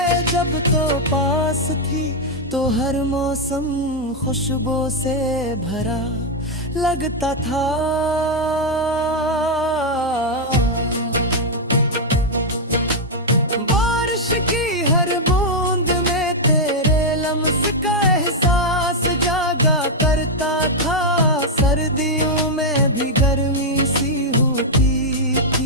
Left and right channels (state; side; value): normal; both; correlation -0.01